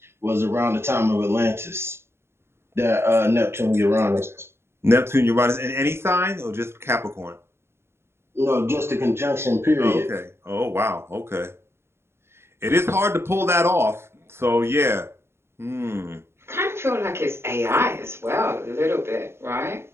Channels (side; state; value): left; late; 0.12 ms